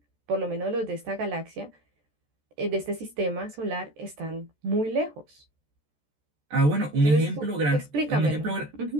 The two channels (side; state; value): left; late; 14 ms